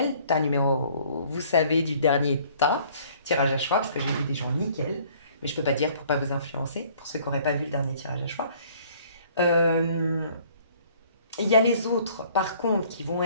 Tas numéro, vous savez, du dernier tas, tirage à choix, parce que j'ai vu des gens nickel, mais je peux pas dire pour pas vous influencer, pour ceux qui n'auraient pas vu le dernier tirage à choix. Il y a les autres, par contre, qui vont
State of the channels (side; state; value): both; inverted; correlation -0.57